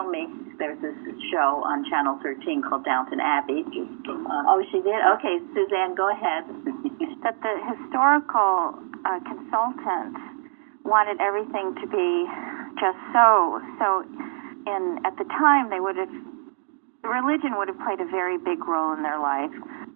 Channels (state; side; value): silent; left; digital silence